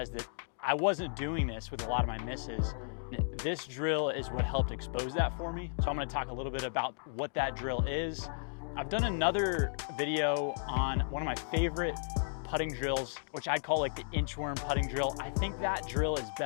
that I wasn't doing this with a lot of my misses. This drill is what helped expose that for me. So I'm gonna talk a little bit about what that drill is. I've done another video on one of my favorite putting drills, which I'd call like the inchworm putting drill. I think that drill is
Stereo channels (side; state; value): right; silent; digital silence